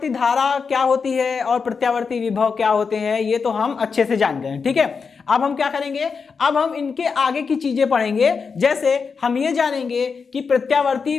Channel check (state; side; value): quieter; right; 5.4 dB